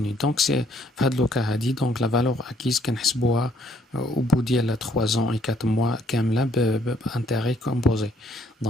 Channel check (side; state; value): both; normal; correlation 0.66